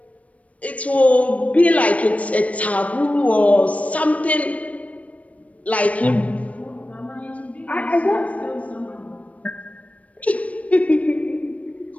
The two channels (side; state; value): right; late; 0.067 ms